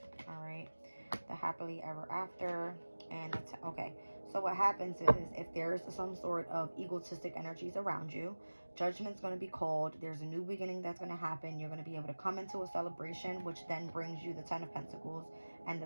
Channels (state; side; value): inverted; both; correlation -1.00